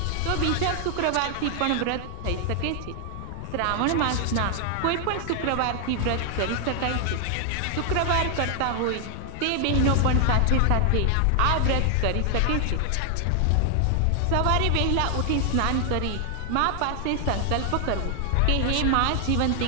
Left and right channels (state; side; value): different; both; correlation 0.00